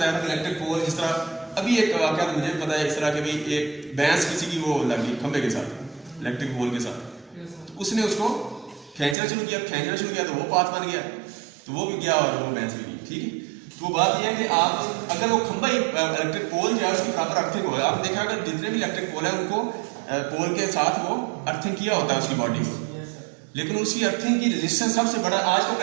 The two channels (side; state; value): left; drops out; at 9.2 s